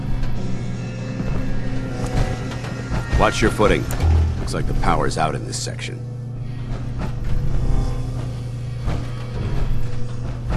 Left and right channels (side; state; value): both; identical; correlation 1.00